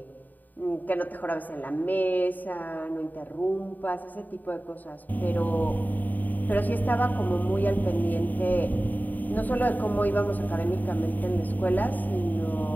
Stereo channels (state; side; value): late; right; 0.085 ms